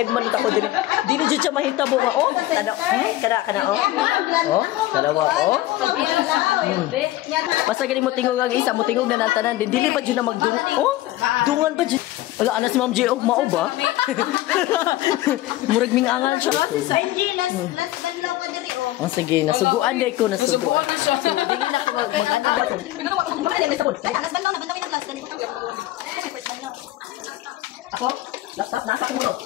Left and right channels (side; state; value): right; quieter; 16.0 dB